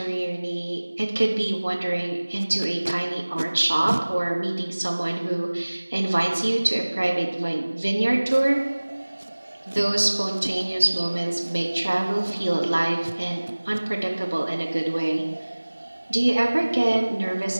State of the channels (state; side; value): inverted; both; correlation -1.00